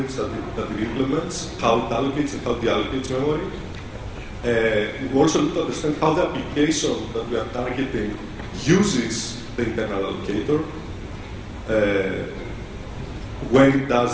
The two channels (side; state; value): both; identical; correlation 1.00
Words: that it implements, how it allocates and how it deallocates memory. We also need to understand how the application that we are targeting uses the internal allocator when it